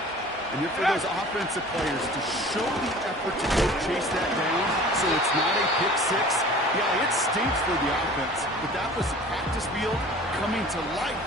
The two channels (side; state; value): both; normal; correlation 0.44